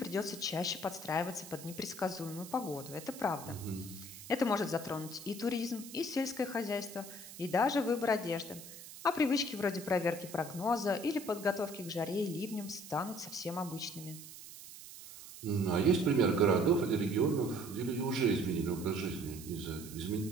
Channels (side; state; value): right; noise; hiss, 14 dB below the sound